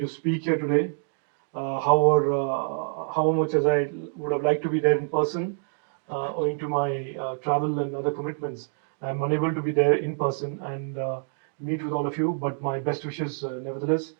speak here today. How much as I would have liked to be there in person, owing to my travel and other commitments, I'm unable to be there in person and meet with all of you. But my best wishes, nevertheless,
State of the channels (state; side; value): silent; left; digital silence